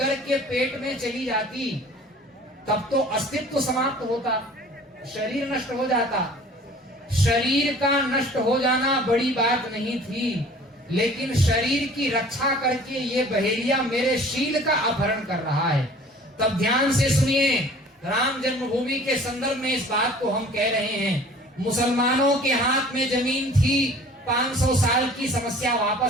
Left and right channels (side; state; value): both; normal; correlation 0.48